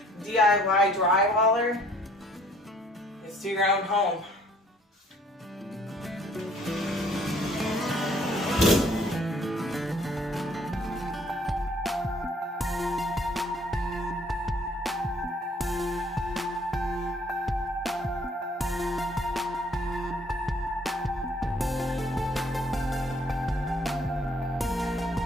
DIY drywaller is do your own home.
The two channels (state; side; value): normal; both; correlation 0.60